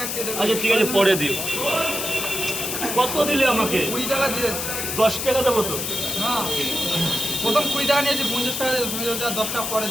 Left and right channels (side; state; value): left; noise; hiss, 3 dB below the sound